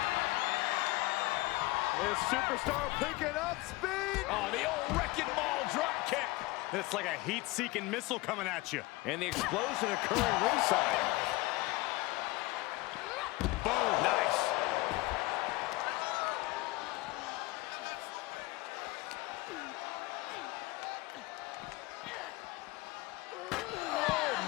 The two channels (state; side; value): quieter; right; 21.2 dB